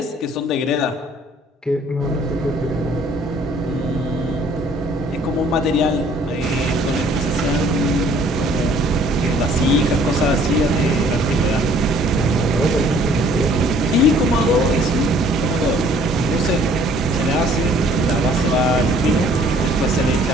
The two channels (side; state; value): both; normal; correlation 0.58